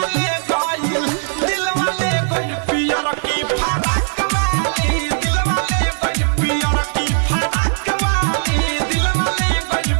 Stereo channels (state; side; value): silent; left; 67 dB below the other